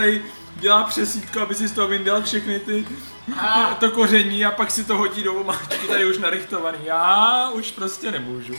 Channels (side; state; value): both; inverted; correlation -1.00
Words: dělá přesítko, aby si z toho vyndal všechny ty to koření a pak si to hodí do omáčky, tady už narychtovaný. Já už prostě nemůžu.